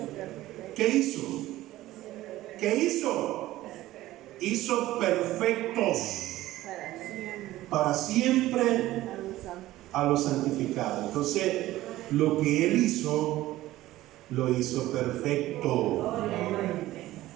¿Qué hizo? ¿Qué hizo? Hizo perfectos para siempre a los santificados. Entonces, lo que Él hizo, lo hizo perfecto.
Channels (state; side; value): quieter; left; 15.9 dB